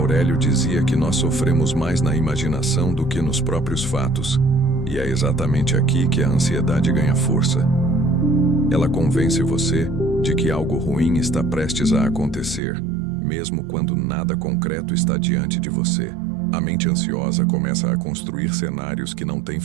dizia que nós sofremos mais na imaginação do que nos próprios fatos, e é exatamente aqui que a ansiedade ganha força. Ela convence você de que algo ruim está prestes a acontecer, mesmo quando nada concreto está diante de você. A mente ansiosa começa a construir cenários que não têm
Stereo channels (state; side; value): drops out; left; at 12.6 s